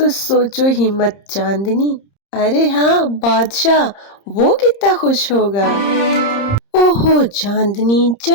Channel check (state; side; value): late; right; 30 ms